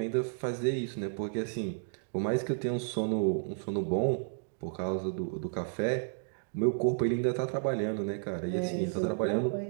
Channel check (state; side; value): silent; left; digital silence